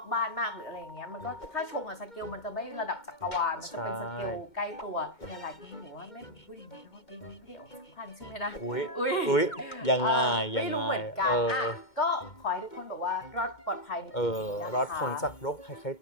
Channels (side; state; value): right; late; 2.2 ms